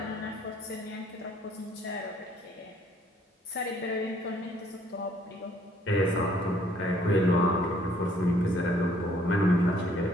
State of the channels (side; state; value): both; normal; correlation 0.62